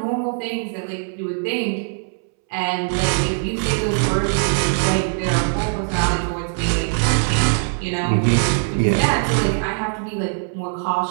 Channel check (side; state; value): left; silent; 65 dB below the other